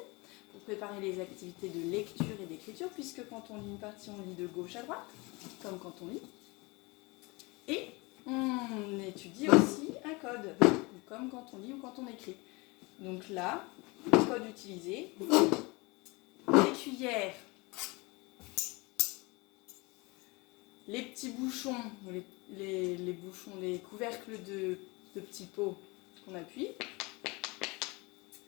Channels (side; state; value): right; quieter; 25.9 dB